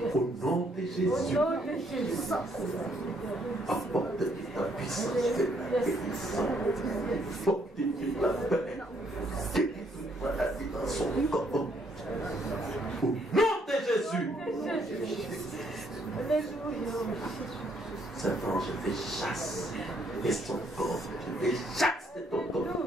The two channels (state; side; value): normal; both; correlation 0.69